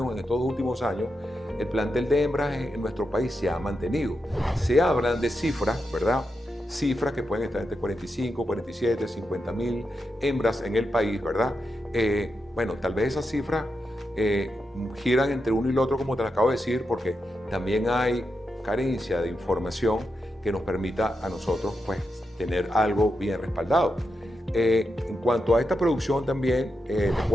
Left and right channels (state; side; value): normal; both; correlation 0.87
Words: en estos últimos años, el plantel de hembras en nuestro país se ha mantenido. Se hablan de cifras, ¿verdad? Cifras que pueden estar entre 45, 47, 50 mil hembras en el país, ¿verdad? Bueno, tal vez esas cifras giran entre uno y el otro, como te lo acabo de decir, porque también hay carencia de información que nos permita a nosotros, pues, tener algo bien respaldado. En cuanto a esta producción también, te